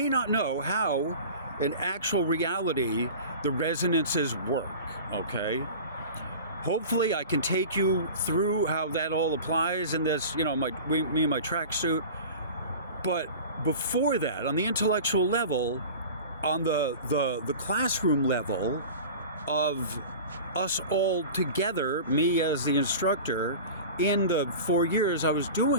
not know how, in actual reality, the resonances work, okay? Hopefully I can take you through how that all applies in this, me and my tracksuit. But before that, on the intellectual level, on the classroom level of us all together, me as the instructor, in the 4 years I was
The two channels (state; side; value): inverted; both; correlation -0.36